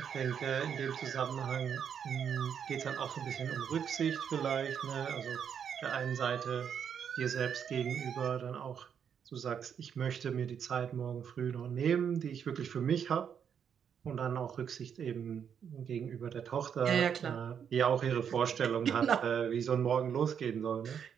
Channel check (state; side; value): quieter; left; 7.8 dB